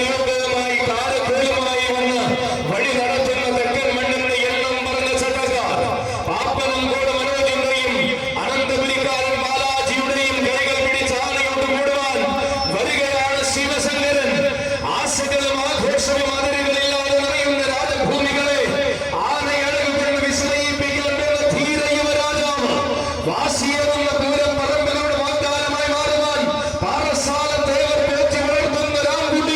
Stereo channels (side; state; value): both; identical; correlation 1.00